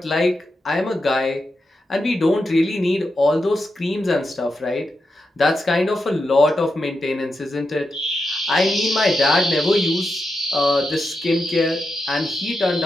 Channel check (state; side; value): normal; both; correlation 0.87